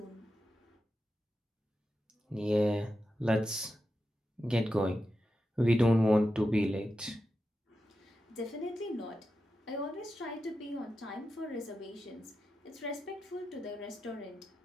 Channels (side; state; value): both; normal; correlation 0.90